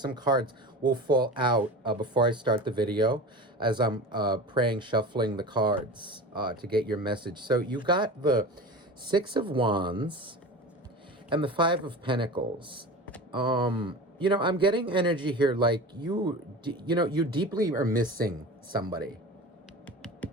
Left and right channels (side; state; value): both; normal; correlation 0.32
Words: cards will fall out before I start the video as I'm praying, shuffling the cards to get your message. So you got the Six of Wands and the Five of Pentacles. You know, I'm getting energy here like you deeply are missing somebody.